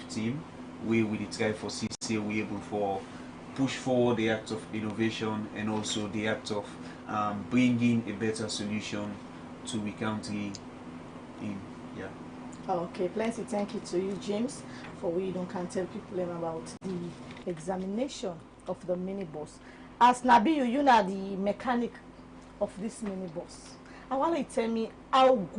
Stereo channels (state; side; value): identical; both; correlation 1.00